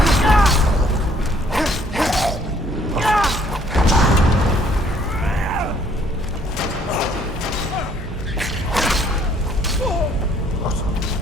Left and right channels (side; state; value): both; normal; correlation 0.62